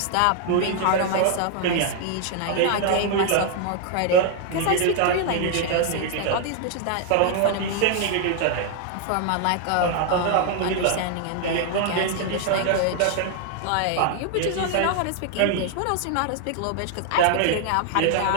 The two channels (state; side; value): different; both; correlation 0.00